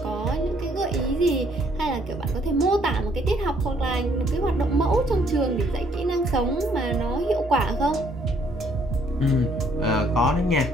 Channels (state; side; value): normal; both; correlation 0.66